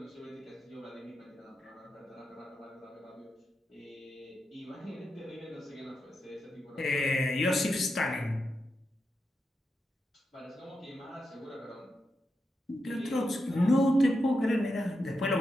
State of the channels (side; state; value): both; normal; correlation 0.86